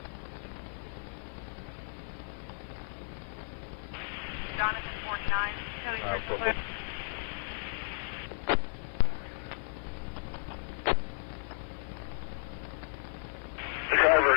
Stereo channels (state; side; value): silent; right; 55 dB below the other